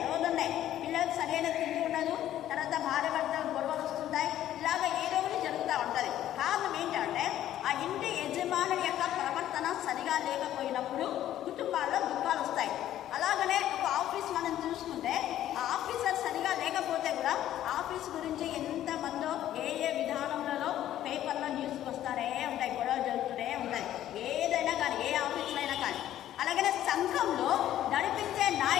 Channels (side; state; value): right; quieter; 12.3 dB